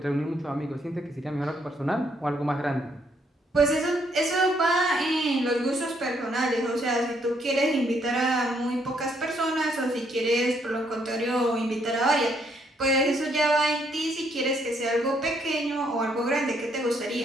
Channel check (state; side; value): normal; both; correlation 0.71